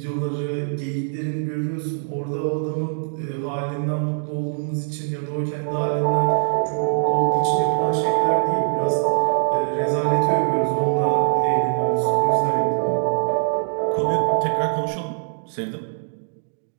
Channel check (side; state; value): left; silent; digital silence